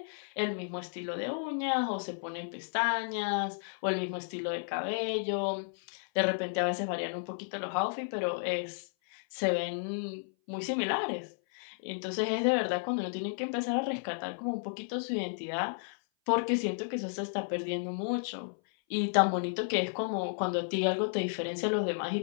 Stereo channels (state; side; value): silent; right; 56 dB below the other